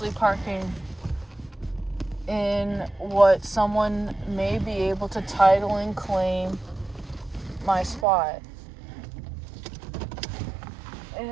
parking in what someone may be able to title and claim my spot.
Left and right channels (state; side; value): drops out; left; at 8.1 s